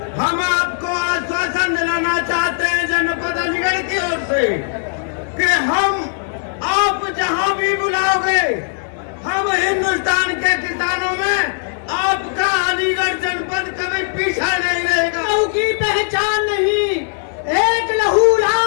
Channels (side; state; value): right; silent; digital silence